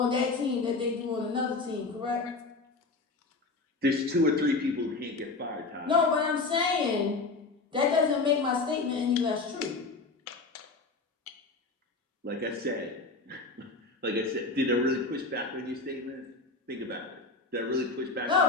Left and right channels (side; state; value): right; quieter; 3.7 dB